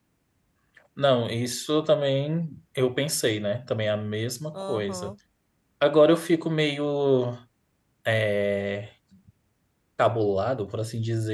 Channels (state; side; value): identical; both; correlation 1.00